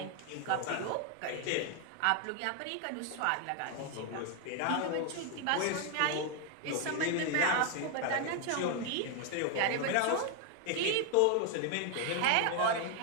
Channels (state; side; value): different; both; correlation 0.01